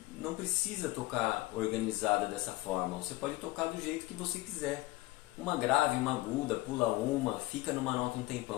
não precisa tocar organizada dessa forma. Você pode tocar do jeito que você quiser. Uma grave, uma aguda, pula uma, fica numa nota um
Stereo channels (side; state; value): right; quieter; 19.4 dB